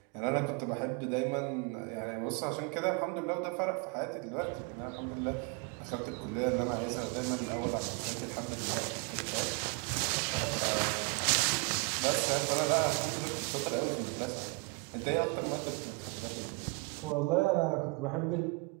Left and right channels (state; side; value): quieter; left; 31.3 dB